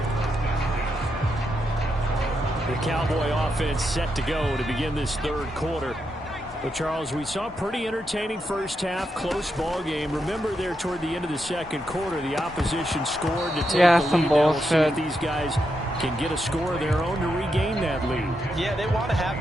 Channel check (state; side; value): normal; both; correlation 0.83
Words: The Cowboy offense set to go to begin this third quarter. But, Charles, we saw a pretty entertaining first half, close ball game. Remember there toward the end of the second quarter, the opposition scored to take the lead. Some bullshit. We'll see if these guys can get a score of their own to regain that lead. Yeah, they want to have